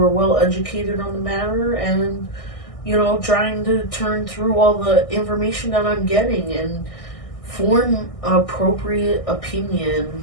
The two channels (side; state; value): right; late; 1.6 ms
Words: well educated on the matter, and trying to turn through all the information that I'm getting and form an appropriate